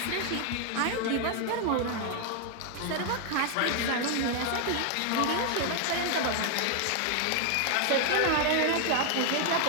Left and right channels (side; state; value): both; different; correlation 0.00